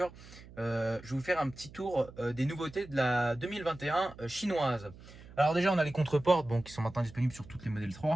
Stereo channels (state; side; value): noise; right; hum, 19 dB below the sound